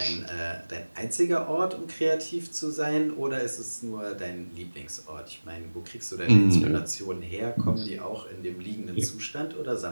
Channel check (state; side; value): inverted; both; correlation -1.00